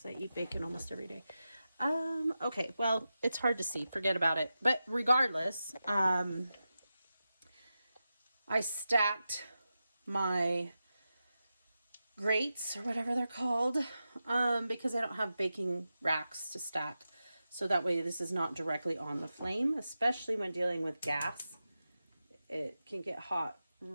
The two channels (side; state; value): both; inverted; correlation -0.91